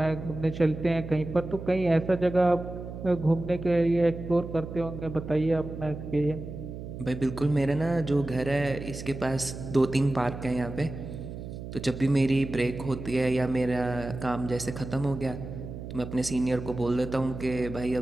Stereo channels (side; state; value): right; noise; hum, 9 dB below the sound